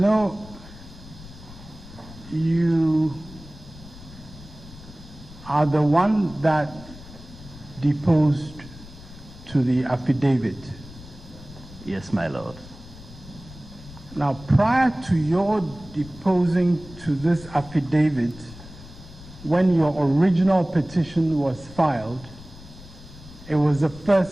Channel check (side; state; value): left; noise; rumble, 18 dB below the sound